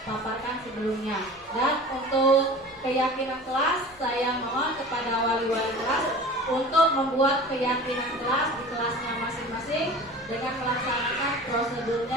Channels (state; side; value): normal; both; correlation 0.39